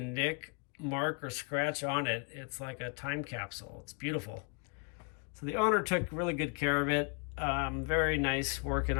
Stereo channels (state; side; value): quieter; right; 37.1 dB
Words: mark, or scratch on it. It's like a time capsule. It's beautiful. So the owner took really good care of it. Very nice working